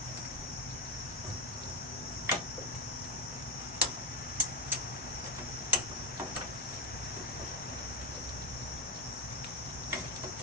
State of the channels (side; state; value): both; normal; correlation 0.07